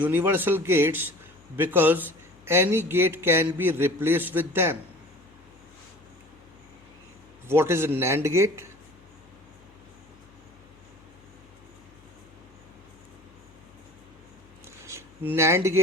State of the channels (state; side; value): noise; left; hum, 28 dB below the sound